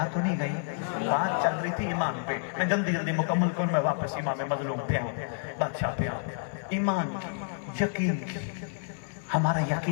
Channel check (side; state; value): right; silent; 58 dB below the other